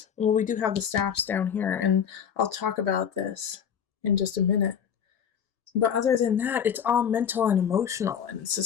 Well, we do have the staffs down here, and I'll talk about this in just a minute. But other than that, it's all mental and emotional, and it's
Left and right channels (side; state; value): right; quieter; 8.0 dB